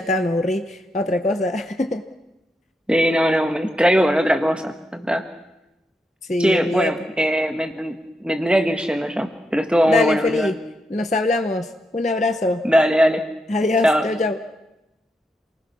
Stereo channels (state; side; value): normal; both; correlation 0.83